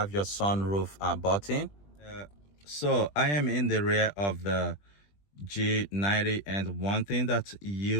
your sunroof button. So I am in the rear of the G90, and one thing that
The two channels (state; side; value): late; right; 20 ms